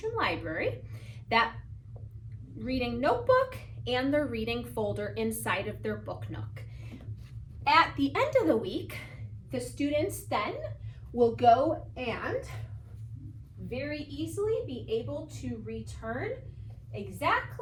library, that reading notebook, and their reading folder inside of their book nook. At the end of the week, the students then will go and very easily be able to return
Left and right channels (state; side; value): identical; both; correlation 1.00